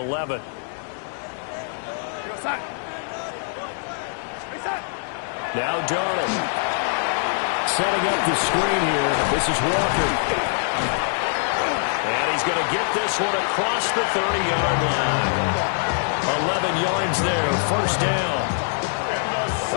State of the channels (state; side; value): silent; right; digital silence